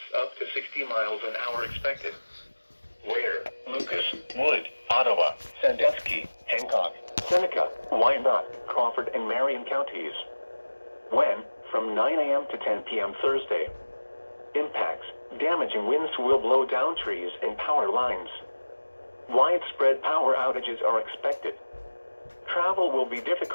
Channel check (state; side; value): inverted; both; correlation -1.00